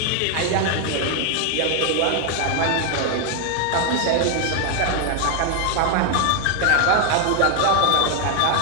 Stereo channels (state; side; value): different; both; correlation 0.00